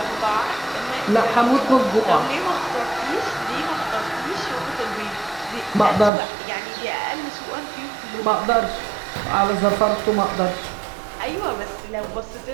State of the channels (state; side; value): drops out; left; at 6.1 s